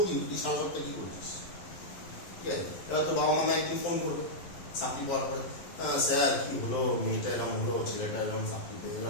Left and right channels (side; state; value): right; late; 11 ms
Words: কিন্তু তুই সারা সপ্তাহে কি করছিস, ঠিক আছে? এবার তোর বাবা মা একদিন ফোন করবে চাকরি পাওয়ার পরে, স্যার কি হলো, মেয়েটা এরকম হলো, ছেলেটা এরকম চাকরি পেয়ে